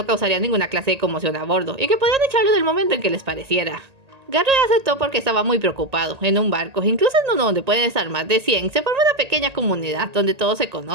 causaría ninguna clase de conmoción a bordo y que podían echarlo del momento en que les pareciera. Garrett aceptó porque estaba muy preocupado. En un barco, incluso en uno donde pueden estar más de 100, se forma una pequeña comunidad donde todos se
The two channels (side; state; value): left; late; 1.8 ms